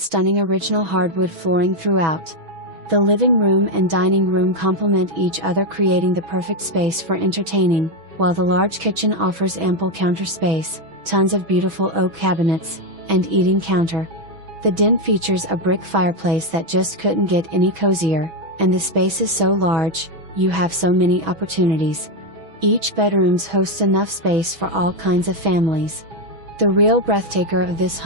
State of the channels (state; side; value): late; left; 6.1 ms